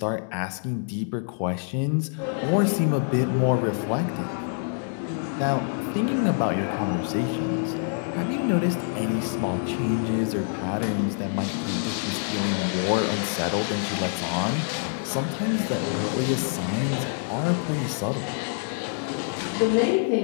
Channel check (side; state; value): right; silent; digital silence